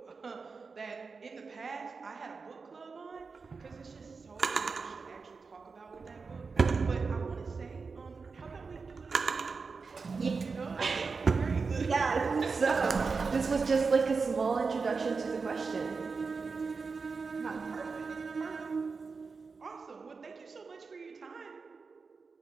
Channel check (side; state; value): left; quieter; 4.7 dB